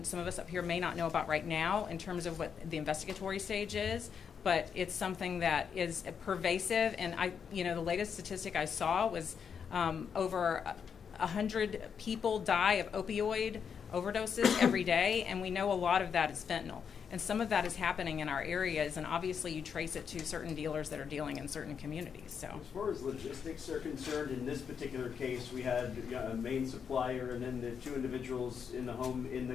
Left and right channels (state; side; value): quieter; right; 6.9 dB